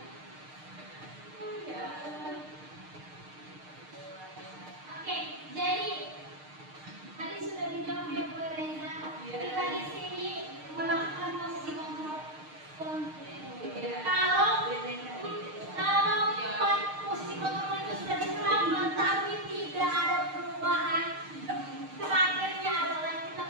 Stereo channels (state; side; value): late; left; 6.5 ms